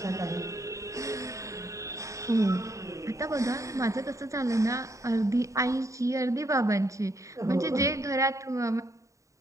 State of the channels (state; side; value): late; left; 0.15 ms